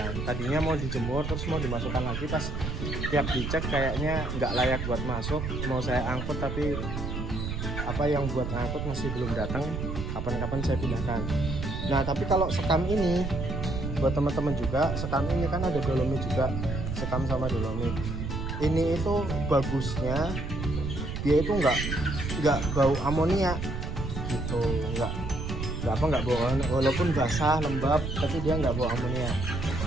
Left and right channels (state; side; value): noise; right; rumble, 4 dB below the sound